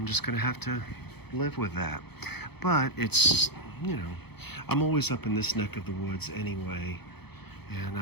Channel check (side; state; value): right; late; 0.98 ms